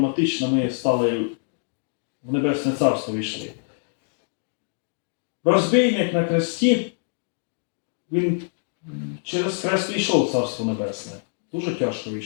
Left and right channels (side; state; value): right; silent; digital silence